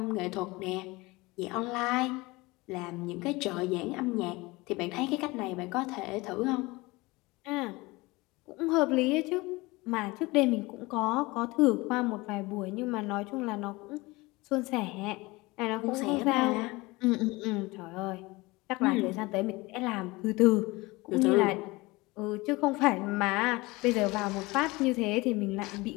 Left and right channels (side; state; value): right; quieter; 22.6 dB